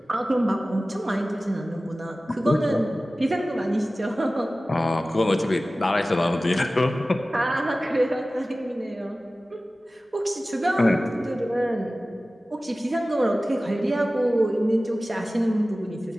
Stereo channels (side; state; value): both; normal; correlation 0.97